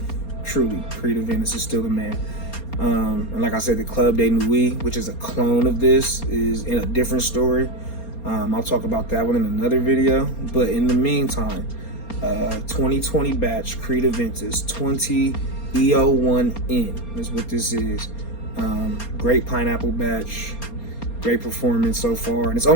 truly, CreedAventus is still the man. And like I said, the Club de Nuit, which is a clone of this, is in a different story. I'll talk about that one in another video. But in the meantime, 2020 batch CreedAventus 20 EO1N is what this is. Great pineapple batch, great performance so far, and it's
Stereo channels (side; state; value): right; late; 4.3 ms